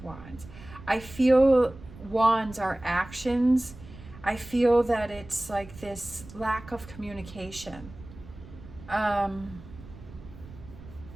Wands. I feel wands are actions. I feel that it's like this lack of communication.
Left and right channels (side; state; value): right; noise; rumble, 17 dB below the sound